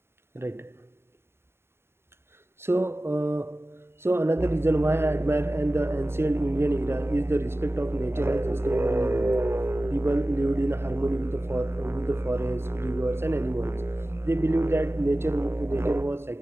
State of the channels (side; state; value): left; late; 0.12 ms